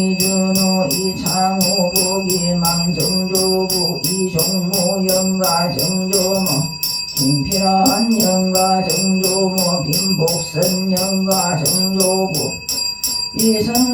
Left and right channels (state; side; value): identical; both; correlation 1.00